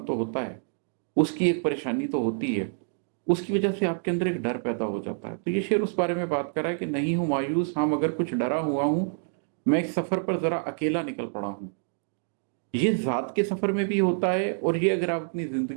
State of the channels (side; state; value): left; silent; 60 dB below the other